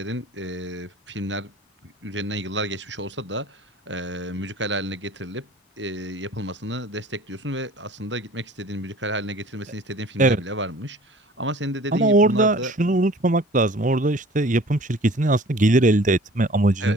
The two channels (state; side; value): normal; both; correlation 0.48